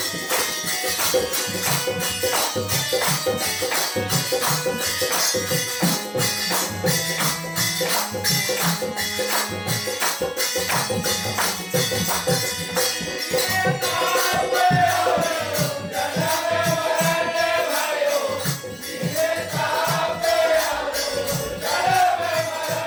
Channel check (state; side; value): identical; both; correlation 1.00